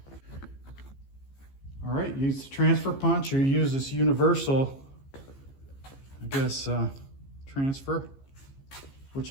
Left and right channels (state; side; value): late; right; 15 ms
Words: All right, use the transfer punch or use this universal, I guess, transfer, which